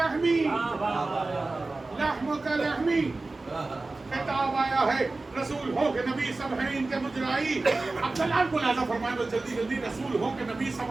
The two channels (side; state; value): left; quieter; 3.3 dB